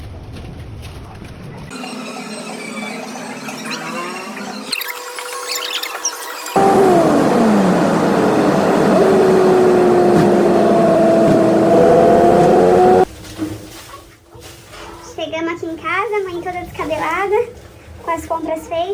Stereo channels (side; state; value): both; identical; correlation 1.00